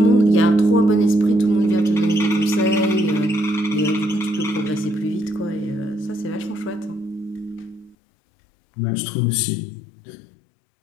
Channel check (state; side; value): drops out; right; at 8.0 s